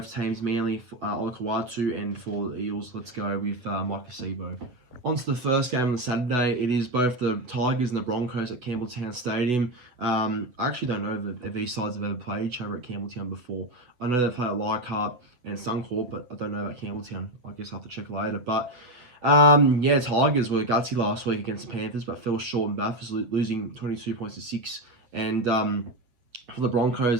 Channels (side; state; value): left; late; 8.2 ms